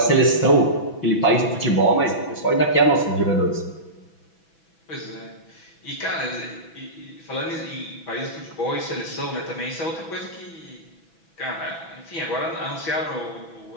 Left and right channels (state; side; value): late; right; 6.1 ms